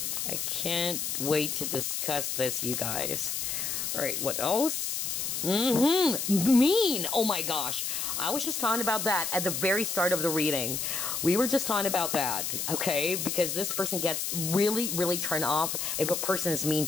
I can't wait to discuss this, you guys. Alright, what else? Mean! Oh my gosh. I was just talking about that at the very start of the reading. We were just talking about that, okay? Because this person gets really, really turned off if a person is mean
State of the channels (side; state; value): left; noise; hiss, 2 dB below the sound